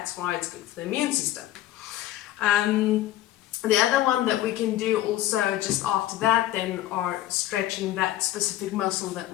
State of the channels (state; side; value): quieter; right; 14.2 dB